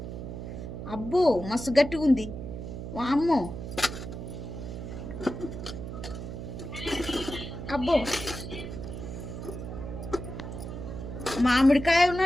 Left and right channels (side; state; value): right; noise; hum, 8 dB below the sound